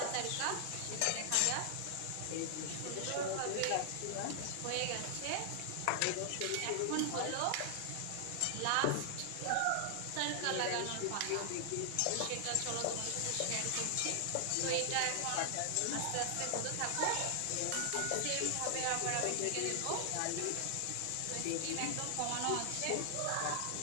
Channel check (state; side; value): different; both; correlation 0.00